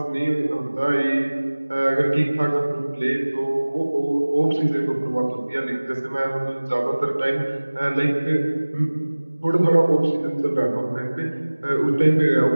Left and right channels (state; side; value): inverted; both; correlation -1.00